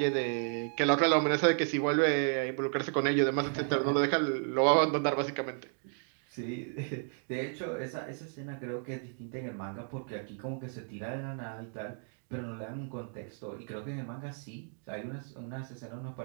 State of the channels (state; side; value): silent; left; 56 dB below the other